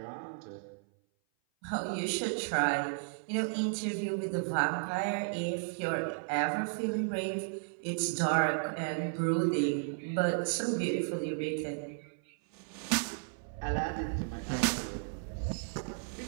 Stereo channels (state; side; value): silent; left; 55 dB below the other